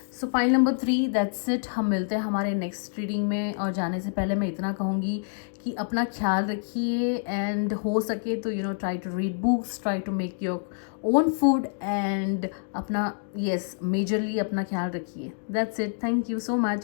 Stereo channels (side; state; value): right; silent; digital silence